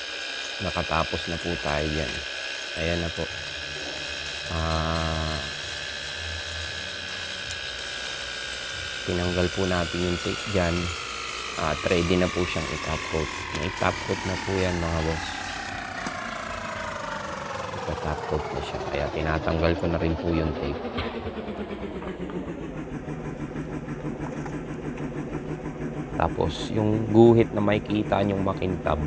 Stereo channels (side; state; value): both; identical; correlation 1.00